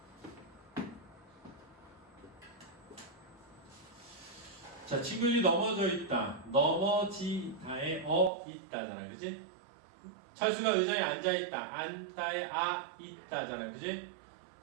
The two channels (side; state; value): left; drops out; at 8.3 s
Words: 자, 친구들이 넘어져 있다. 넘어지다에 있다잖아. 그지? 철수가 의자에 앉아 있다. 앉다에 있다잖아. 그지?